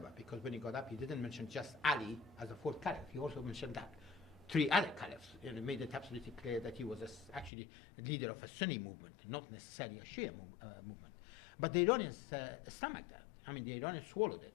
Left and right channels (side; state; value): right; drops out; at 7.5 s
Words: because when he got up, he didn't mention just Ali as a fourth caliph. He also mentioned that 3 other caliphs, and made it absolutely clear that he was actually a leader of a Sunni movement, not necessarily a Shia movement. But the Iranians stomached that. The Iranians swallowed